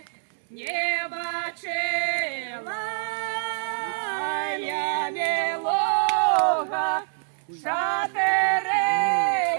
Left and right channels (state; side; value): silent; left; 61 dB below the other